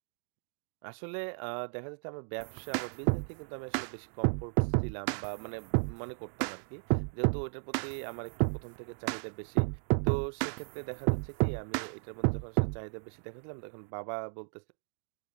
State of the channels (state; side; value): silent; left; digital silence